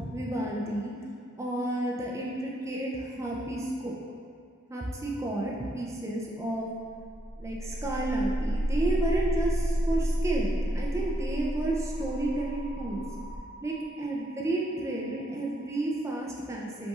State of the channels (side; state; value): both; normal; correlation 0.76